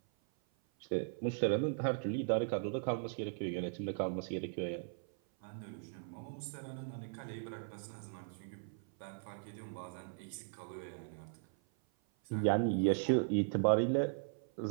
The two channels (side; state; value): left; silent; 52 dB below the other